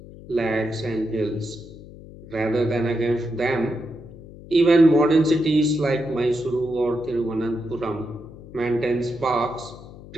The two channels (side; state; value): left; noise; hum, 17 dB below the sound